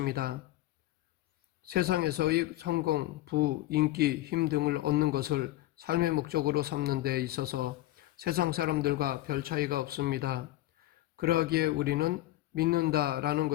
세상에서의 성공, 부, 인기, 힘 등을 얻는 것을 삶의 목적으로 삼는 데 있어서 세상 사람들과 별 차이가 없습니다. 그러하기에 우리는 믿는다라는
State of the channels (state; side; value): quieter; right; 16.1 dB